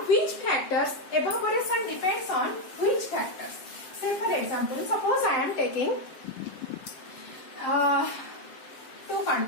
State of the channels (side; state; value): right; late; 7.5 ms